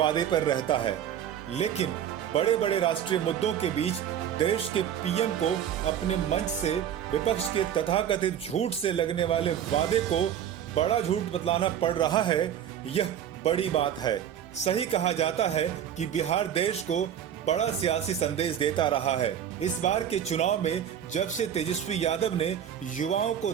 पर रहता है। लेकिन बड़े बड़े राष्ट्रीय मुद्दों के बीच देश के पीएम को अपने मंच से विपक्ष के तथाकथित झूठ से लगने वाले वादे को बड़ा झूठ बतलाना पड़ रहा है। यह बड़ी बात है। सही कहा जाता है कि बिहार देश को बड़ा सियासी संदेश देता रहा है। इस बार के चुनाव में जब से तेजस्वी यादव ने युवाओं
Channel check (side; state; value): left; quieter; 9.6 dB